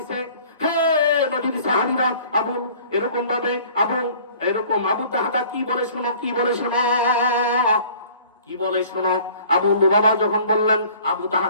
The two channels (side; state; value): both; inverted; correlation -0.51